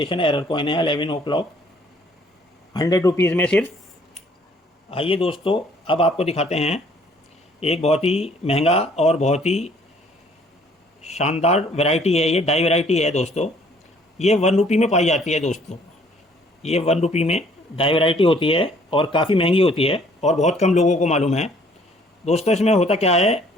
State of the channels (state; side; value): normal; both; correlation 0.60